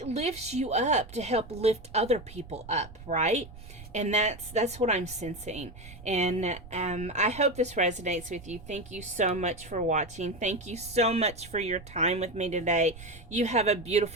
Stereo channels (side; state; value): right; noise; rumble, 17 dB below the sound